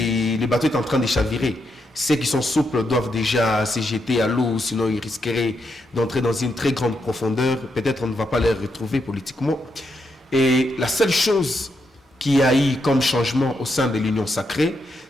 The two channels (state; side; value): normal; both; correlation 0.81